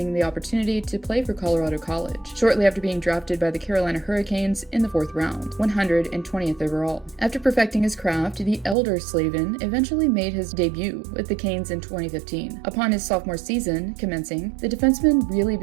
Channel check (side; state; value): left; drops out; at 8.8 s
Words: the opportunity to play for Colorado College, shortly after being drafted by the Carolina Hurricanes in the 4th round, 120th overall. After perfecting his craft, the elder Slavin eventually made his debut with the Canes in 2015. Upon his sophomore season commencing, the defenseman really